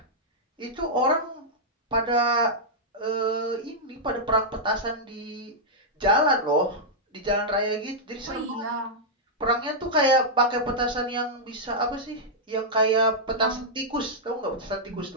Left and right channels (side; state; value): both; normal; correlation -0.07